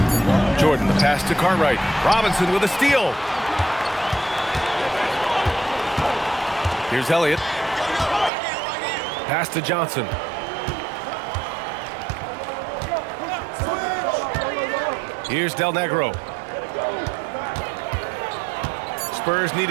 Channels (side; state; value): left; drops out; at 8.3 s